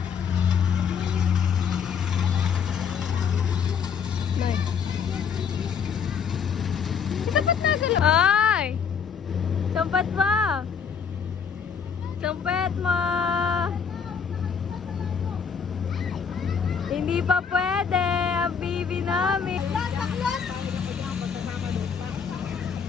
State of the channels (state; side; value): quieter; right; 6.7 dB